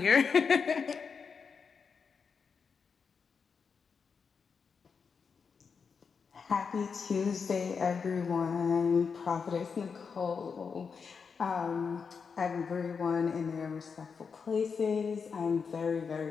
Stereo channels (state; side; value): quieter; right; 5.7 dB